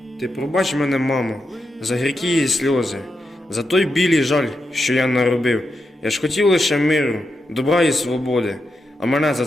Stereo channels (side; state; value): both; normal; correlation 0.86